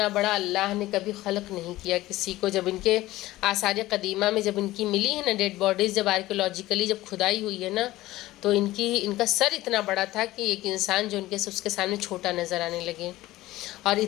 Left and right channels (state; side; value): quieter; right; 17.0 dB